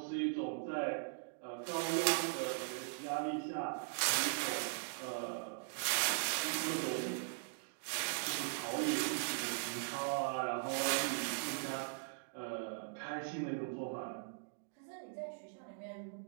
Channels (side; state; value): left; silent; digital silence